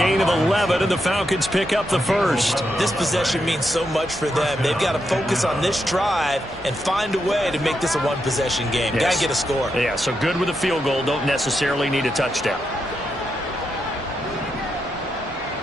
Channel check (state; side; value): normal; both; correlation 0.83